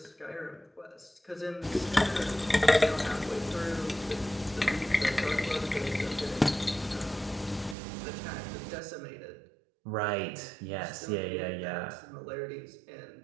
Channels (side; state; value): left; drops out; at 7.8 s